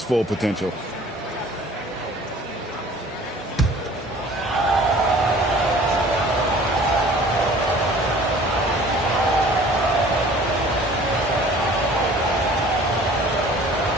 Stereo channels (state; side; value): normal; both; correlation 0.49